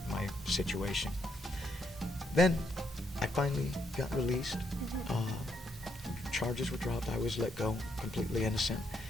my situation. Then I finally got released. Charges were dropped. I was let go, completely innocent.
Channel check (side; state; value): both; normal; correlation 0.76